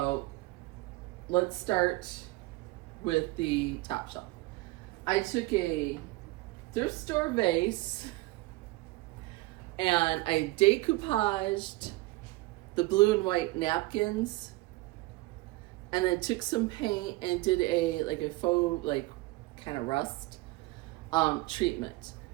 let's start with the top shelf. I took a thrift store vase and I decoupaged the blue and white napkins, and then took some paint and did a faux kind of rust treatment.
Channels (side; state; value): left; quieter; 20.7 dB